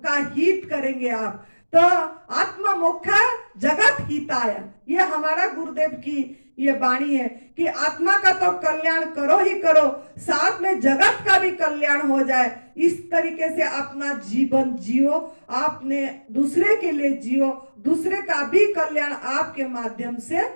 का हित करेंगे आप। तो आत्म मोक्षा जगत हिताय, ये हमारा गुरुदेव की ये वाणी है कि आत्मा का तो कल्याण करो ही करो, साथ में जगत का भी कल्याण हो जाए। इस तरीके से अपना जीवन जियो, आपने दूसरे के लिए जियो, दूसरे का भी कल्याण आपके माध्यम से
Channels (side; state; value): both; inverted; correlation -1.00